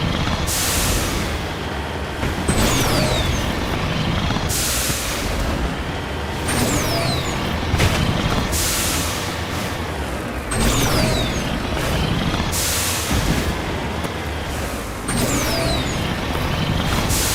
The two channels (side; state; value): both; identical; correlation 1.00